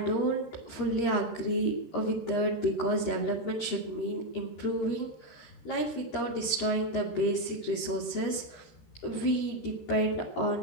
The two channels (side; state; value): right; late; 13 ms